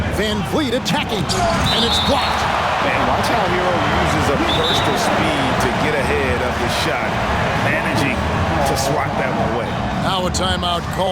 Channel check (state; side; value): identical; both; correlation 1.00